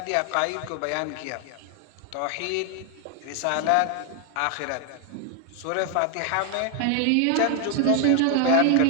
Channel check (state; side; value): different; both; correlation 0.00